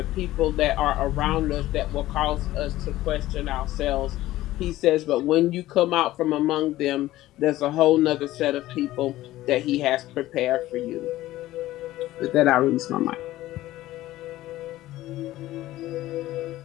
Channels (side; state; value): right; quieter; 15.8 dB